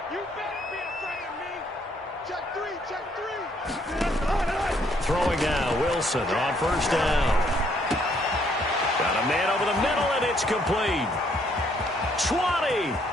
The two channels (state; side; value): normal; both; correlation 0.68